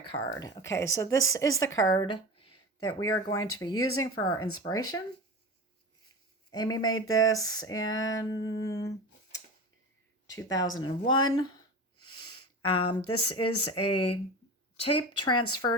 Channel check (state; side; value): normal; both; correlation 0.29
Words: Okay, so this is the card that we are going to be using for our inspiration. Amy made this in 2001. This is a tape transfer